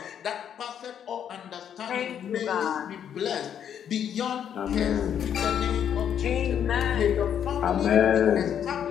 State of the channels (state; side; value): quieter; right; 9.0 dB